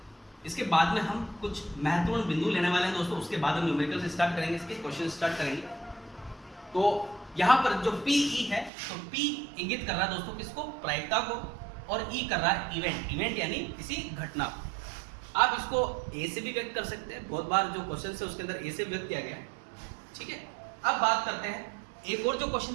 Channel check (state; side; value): drops out; left; at 8.7 s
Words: इसके बाद में हम कुछ महत्वपूर्ण बिंदु लेने वाले हैं दोस्तों। उसके बाद हम न्यूमेरिकल से स्टार्ट करेंगे, इसके क्वेश्चन स्टार्ट करेंगे। तो यहाँ पर जो PE है, तो P इंगित कर रहा है दोस्तों किसको? प्रायिकता को, और E कर रहा है इवेंट यानी किसी घटना को। आप इसको A से भी व्यक्त कर सकते हैं, बहुत बार जो क्वेश्चन है उसके अंदर A से व्यक्त किया गया है, ठीक है। अब बात करते हैं, एक और जो क्वेश्चन